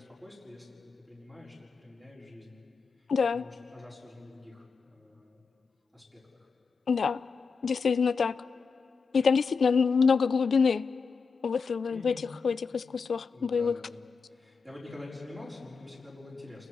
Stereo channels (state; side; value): quieter; right; 5.2 dB